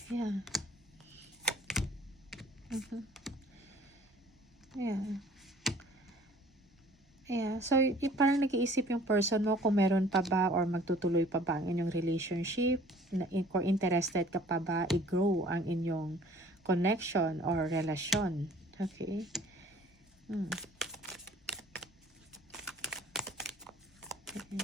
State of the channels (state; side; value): normal; both; correlation 0.53